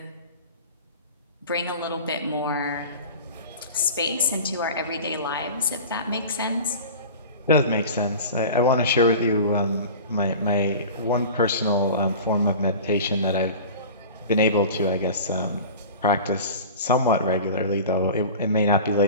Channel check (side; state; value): both; inverted; correlation -0.36